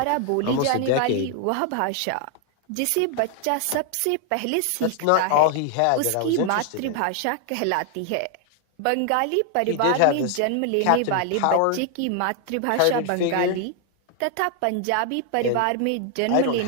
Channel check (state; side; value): different; both; correlation 0.00